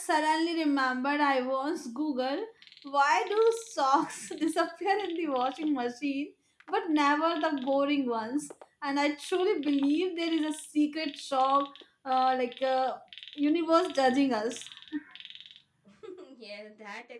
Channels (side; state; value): both; identical; correlation 1.00